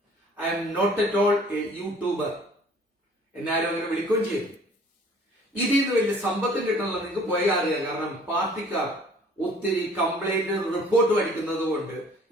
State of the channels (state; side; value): normal; both; correlation 0.53